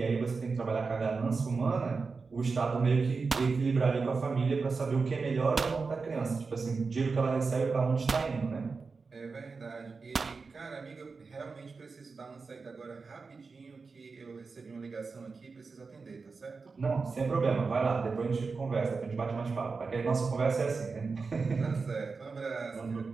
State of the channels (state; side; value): quieter; left; 4.5 dB